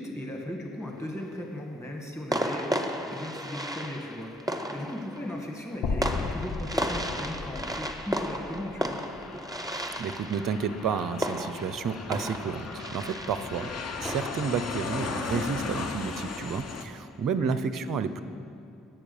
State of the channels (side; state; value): both; normal; correlation 0.59